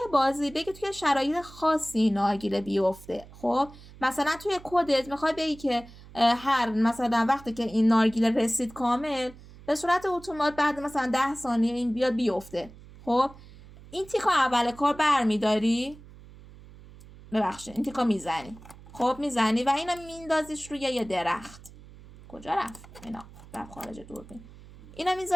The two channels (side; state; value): right; noise; hum, 20 dB below the sound